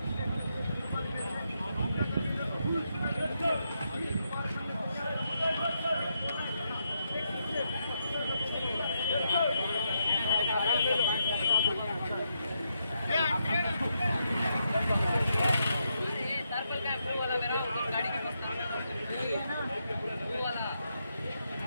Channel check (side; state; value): both; inverted; correlation -0.81